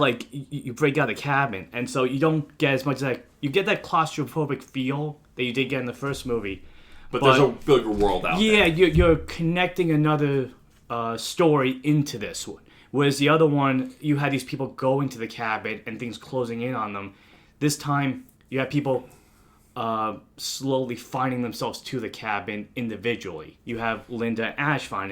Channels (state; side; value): identical; both; correlation 1.00